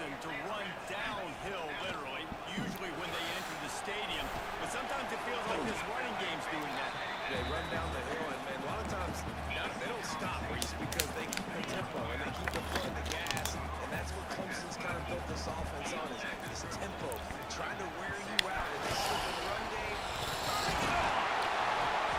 to run downhill, literally, usually when they enter the stadium. But sometimes it feels like this running game's doing that. They run down the hill, and a lot of times they don't stop, Reese, because they keep the tempo and they keep the foot in the gas. And that's what Clemson's kind of built this offense on, is this tempo, trying to wear you out in this run game.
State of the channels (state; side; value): identical; both; correlation 1.00